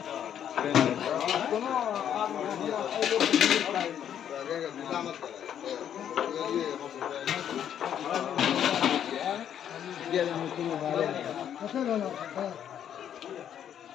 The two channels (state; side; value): quieter; right; 9.6 dB